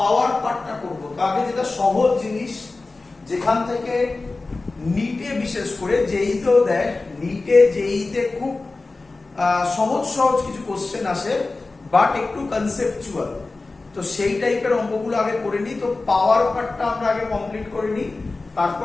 পার্টটা করব। আগে যেটা সহজ জিনিস, যেখান থেকে নিটে বিশেষ করে জেইতেও দেয়, নিটে জেইতে খুব সহজ সহজ কিছু কোশ্চেন আসে, বাট একটু কনসেপচুয়াল। তো সেই টাইপের অঙ্কগুলো আগে করে নিই। তো পাওয়ার পার্টটা আমরা আগে কমপ্লিট করে নিই, তারপর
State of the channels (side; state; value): right; quieter; 3.5 dB